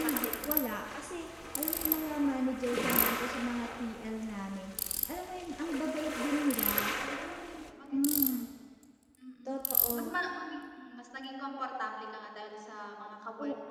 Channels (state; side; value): identical; both; correlation 1.00